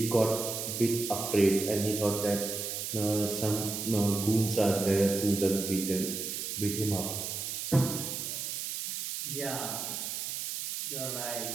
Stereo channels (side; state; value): right; noise; hiss, 4 dB below the sound